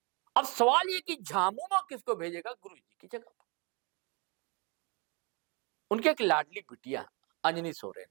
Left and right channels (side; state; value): left; quieter; 30.8 dB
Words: अब सवाल ये कि झामुमो किसको भेजेगा गुरुजी की जगह पर। उनके एक लाडली बिटिया अंजनी सोरेन